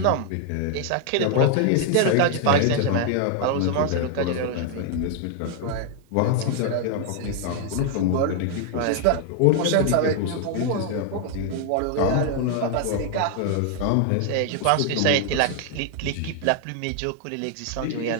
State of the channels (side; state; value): both; different; correlation 0.00